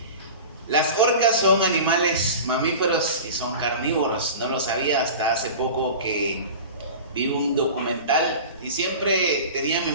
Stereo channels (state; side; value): inverted; both; correlation -0.34